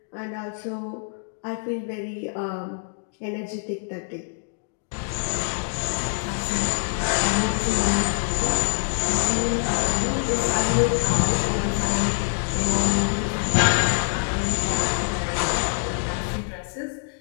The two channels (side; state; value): right; silent; digital silence